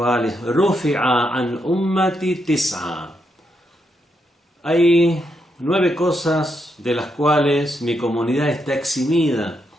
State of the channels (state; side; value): normal; both; correlation 0.81